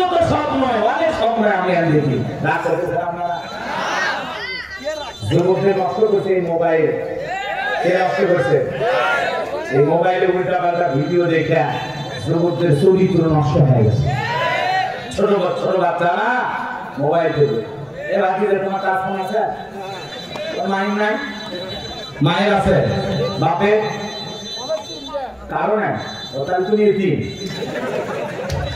তো স্বপ্ন, অনেক স্বপ্ন আমি আর দেখি রাত করতেছে। আপনারা যুবকদের নষ্ট করছে এই মোবাইল, কে নষ্ট করছে? এই মোবাইলে উল্টা পাল্টা ভিডিও দেখে যুবকদের চরিত্র নষ্ট হয়ে গেছে। ছোট ছোট বাচ্চারা মোবাইল দেখে, এ বাকিদের তোমার কাজ ফোন আছে? মায়ের নাই? মায়ের আছে, বাপের কারণে ওটাই তুমি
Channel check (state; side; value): identical; both; correlation 1.00